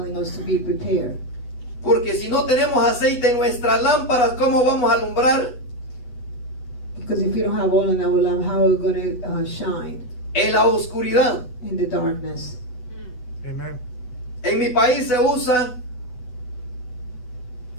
us to be prepared. Porque si no tenemos aceite en nuestras lámparas, ¿cómo vamos a alumbrar? Because if you don't have oil in our lamp, how are we going to shine En la oscuridad. in the darkness? Amen. En mi país se usa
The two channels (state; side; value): late; right; 8.1 ms